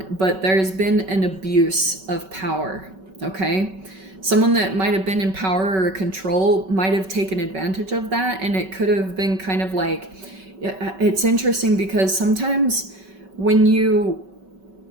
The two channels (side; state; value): left; late; 5.3 ms